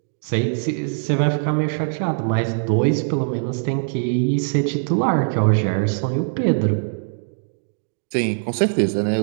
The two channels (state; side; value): silent; left; digital silence